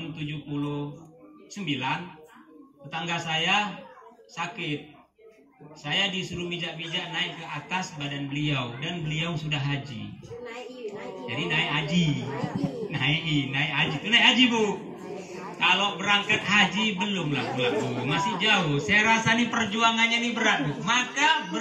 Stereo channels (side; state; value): both; identical; correlation 1.00